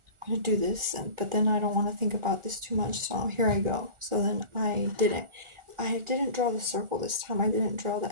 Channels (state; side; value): late; left; 1.4 ms